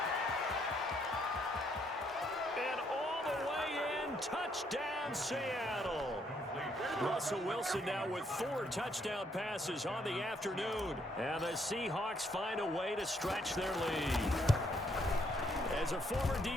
And all the way in. Touchdown, Seattle. Russell Wilson now with 4 touchdown passes on the afternoon. And the Seahawks find a way to stretch their lead. As a former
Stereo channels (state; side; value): normal; both; correlation 0.71